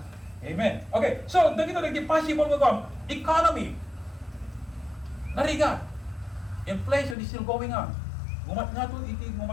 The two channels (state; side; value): drops out; right; at 7.2 s